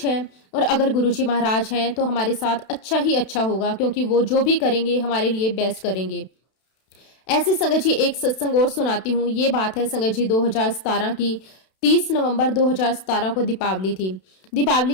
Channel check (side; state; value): right; late; 32 ms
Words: है। और अगर गुरुजी महाराज हैं तो हमारे साथ अच्छा ही अच्छा होगा, क्योंकि वो जो भी करेंगे हमारे लिए बेस्ट करेंगे। ऐसे संगत जी, एक सत्संग और सुनाती हूँ। ये बात है संगत जी 2017 की। 30 नवंबर 2017 को दीपावली थी।